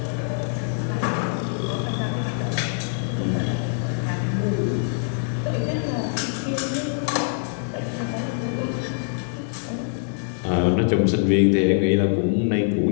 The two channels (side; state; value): right; silent; digital silence